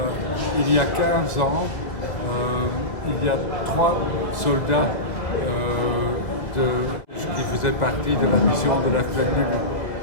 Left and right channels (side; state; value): right; late; 2.2 ms